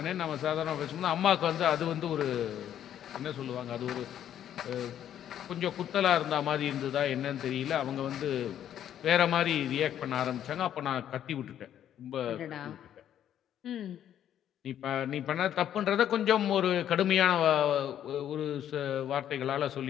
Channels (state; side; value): quieter; right; 10.4 dB